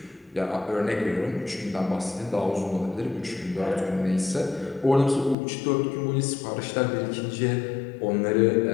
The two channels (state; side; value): drops out; right; at 5.4 s